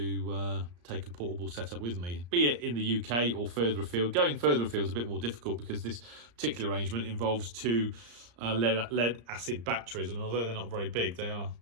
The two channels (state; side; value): late; left; 34 ms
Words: take a portable setup with me, be it in the UK or further afield. Going further afield is a bit more difficult because this particular arrangement involves two lead acid batteries, and although they're not very big, they are